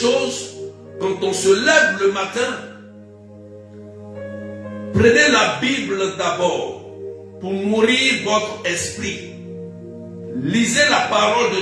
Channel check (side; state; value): both; identical; correlation 1.00